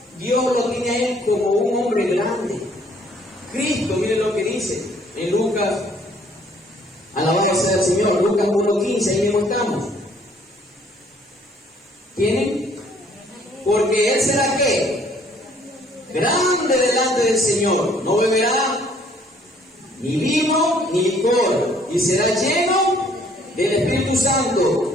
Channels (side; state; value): both; normal; correlation 0.61